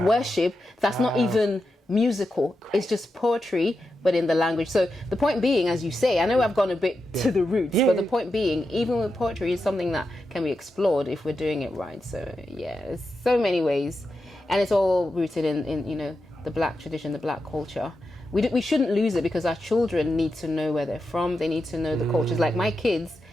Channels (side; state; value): both; normal; correlation 0.88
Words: worship that's not even musical. It's just poetry, but in the language. So the point being, as you say, I know I've gone a bit to the roots, but the point being, even with poetry, is something that can be explored if we're doing it right. So there's so many ways, and it's all rooted in the black tradition, the black culture. We shouldn't lose it, because our children need to know where they're from. They need to know the cultures. Like my kids,